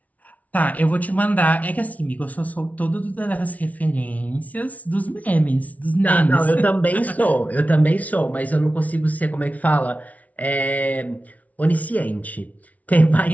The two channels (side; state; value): right; late; 0.070 ms